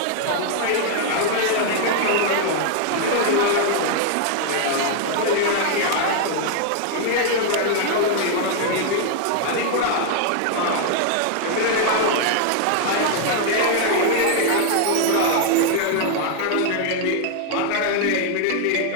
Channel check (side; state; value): both; different; correlation 0.00